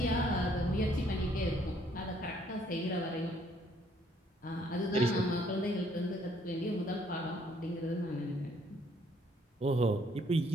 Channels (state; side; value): normal; both; correlation 0.65